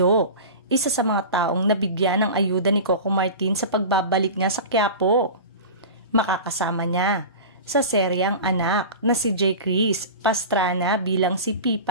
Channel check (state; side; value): inverted; both; correlation -0.31